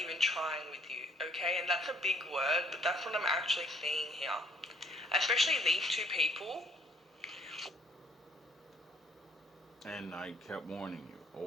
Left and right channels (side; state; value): both; normal; correlation 0.63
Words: even trying with you, okay? And that's a big word, but that's what I'm actually seeing here. Especially these two people. And I kept warning you